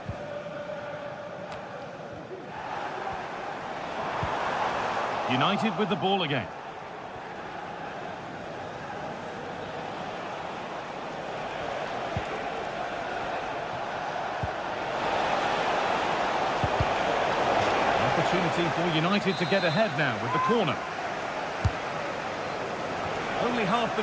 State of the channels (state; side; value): identical; both; correlation 1.00